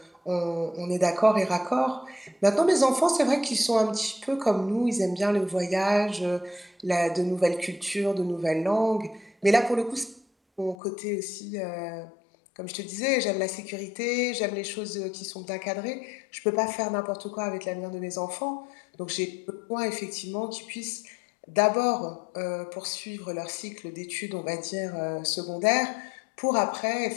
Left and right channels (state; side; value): drops out; right; at 10.8 s